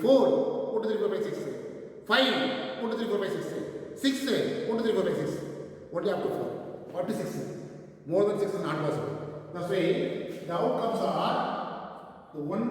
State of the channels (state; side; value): identical; both; correlation 1.00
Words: 1, 2, 3, 4, 5, 6. 5, 1, 2, 3, 4, 5, 6. 6, 1, 2, 3, 4, 5, 6. Only up to 4. Up to 6. More than 6 is not possible. That's why the outcomes are the